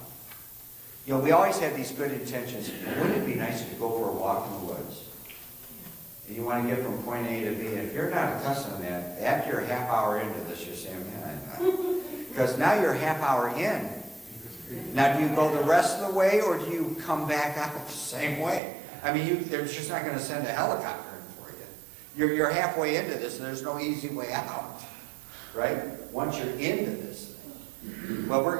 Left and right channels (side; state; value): left; drops out; at 18.6 s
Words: You know, we always have these good intentions. Wouldn't it be nice to go for a walk in the woods? You want to get from point A to B. If you're not accustomed to that, after a half hour into this, you're saying, man, because now you're a half hour in. Now, do you go the rest of the way, or do you come back out the same way? I mean, they're just not going to send a helicopter in for you. You're halfway into this, and there's no easy way out, right? Once you're into this thing. Well, we're